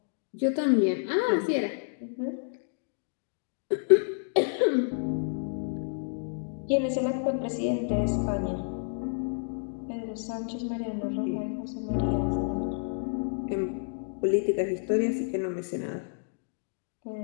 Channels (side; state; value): right; silent; digital silence